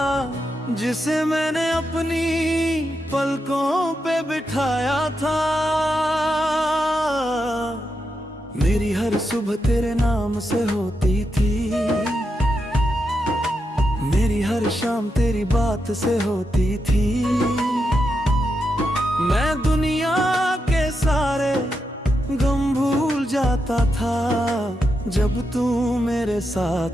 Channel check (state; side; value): normal; both; correlation 0.85